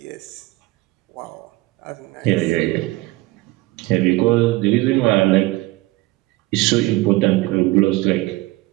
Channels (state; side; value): quieter; left; 19.7 dB